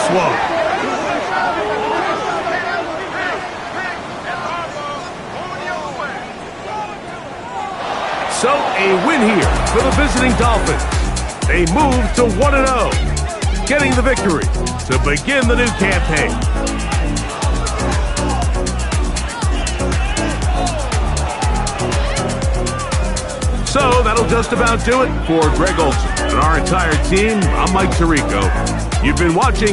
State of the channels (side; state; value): both; identical; correlation 1.00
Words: one. So a win here for the visiting Dolphins. They move to 1-0, getting the victory to begin the new campaign. So that'll just about do it for Greg Olson and our entire team. I'm Mike Tirico. You've been